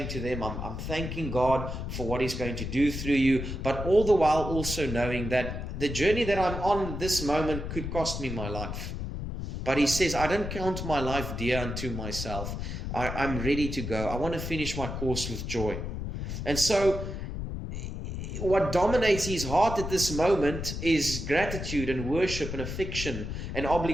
to them, I'm thanking God for what he's going to do through you, but all the while also knowing that the journey that I'm on this moment could cost me my life. But he says, I don't count my life dear unto myself. I'm ready to go. I want to finish my course with joy. And so what dominates his heart at this moment is gratitude and worship and affection and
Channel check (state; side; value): noise; left; rumble, 5 dB below the sound